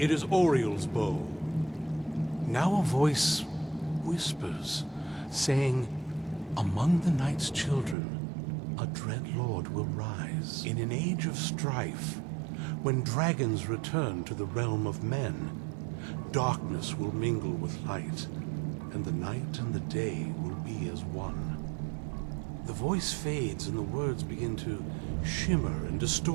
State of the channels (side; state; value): left; drops out; at 8.0 s